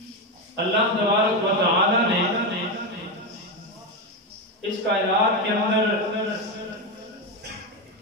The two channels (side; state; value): both; normal; correlation 0.11